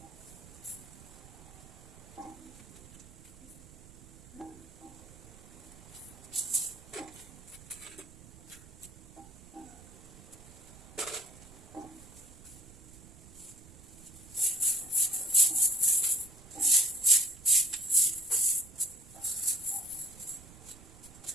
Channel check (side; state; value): right; noise; rumble, 19 dB below the sound